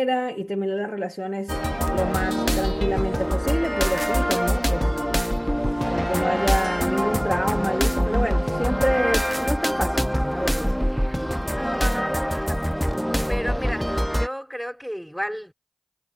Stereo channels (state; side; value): identical; both; correlation 1.00